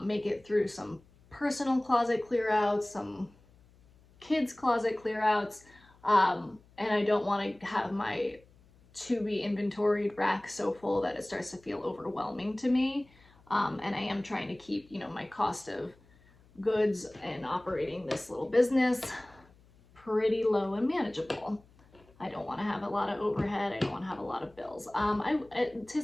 make it through some personal closet clear outs, some kids closet clear outs. And I don't want to have my to be inventoried rack so full that it starts to feel overwhelming to me. And I am trying to keep, you know, my cost of goods and operating this little business pretty low and manageable. I don't want to have a lot of overhead. I don't want to have a lot of bills. I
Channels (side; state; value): left; noise; hum, 28 dB below the sound